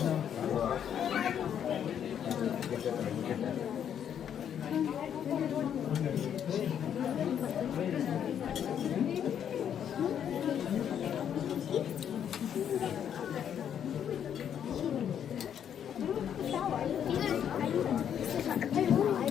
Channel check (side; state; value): right; quieter; 9.0 dB